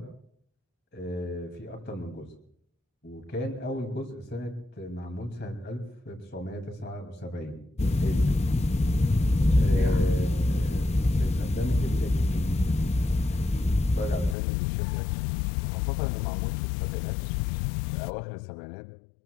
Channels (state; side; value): drops out; right; at 14.4 s